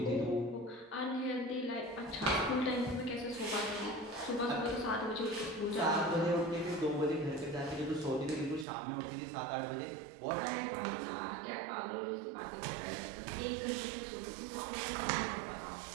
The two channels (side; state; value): left; drops out; at 8.7 s